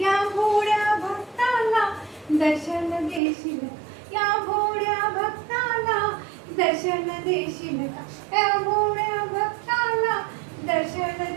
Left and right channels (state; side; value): drops out; left; at 3.2 s